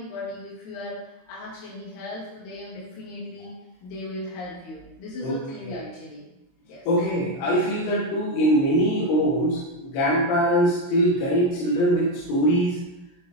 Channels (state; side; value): late; right; 22 ms